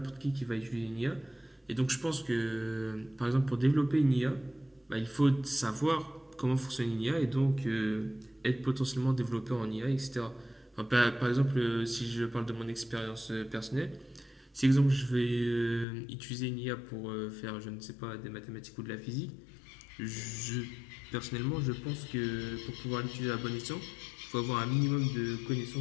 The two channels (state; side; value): drops out; right; at 15.9 s